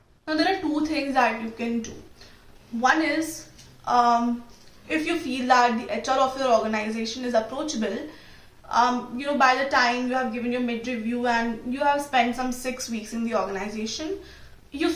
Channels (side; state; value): both; identical; correlation 1.00